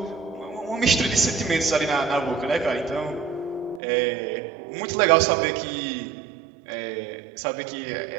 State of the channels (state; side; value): drops out; left; at 3.8 s